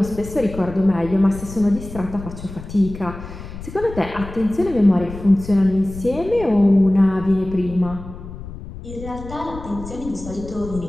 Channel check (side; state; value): left; noise; rumble, 12 dB below the sound